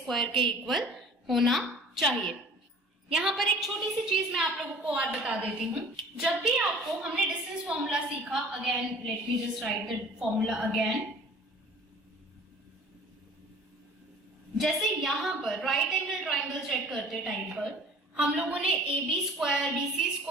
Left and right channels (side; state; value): both; normal; correlation 0.47